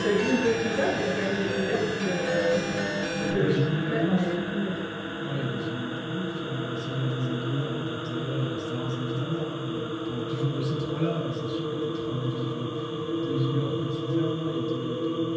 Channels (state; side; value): identical; both; correlation 1.00